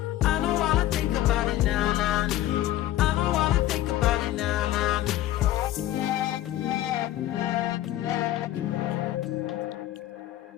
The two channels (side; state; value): right; quieter; 13.9 dB